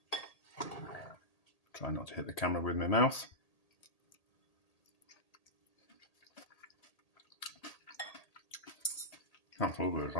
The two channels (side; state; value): right; late; 1.8 ms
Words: Try not to hit the camera with my mouth. That's lovely as